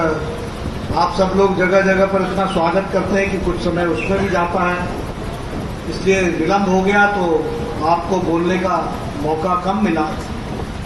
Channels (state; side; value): identical; both; correlation 1.00